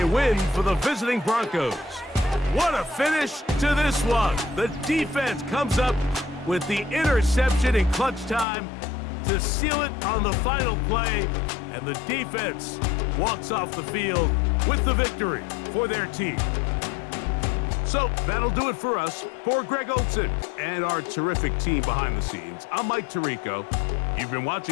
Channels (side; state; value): right; drops out; at 8.5 s